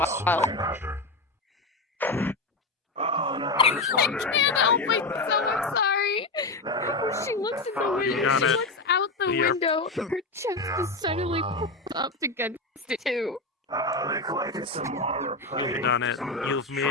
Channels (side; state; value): right; quieter; 3.2 dB